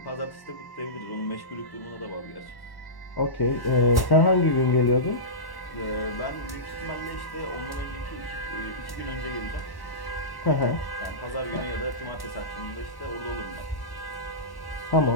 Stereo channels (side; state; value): right; late; 1.1 ms